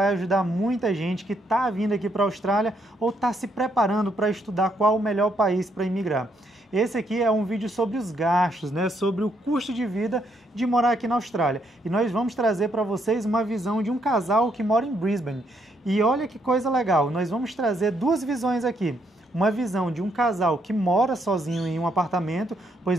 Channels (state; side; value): normal; both; correlation 0.74